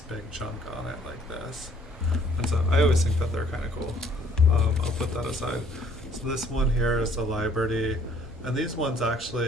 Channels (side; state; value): both; normal; correlation 0.59